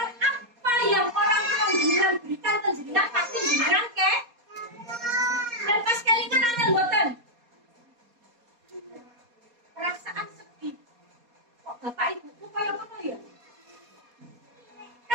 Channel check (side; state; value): left; late; 4.2 ms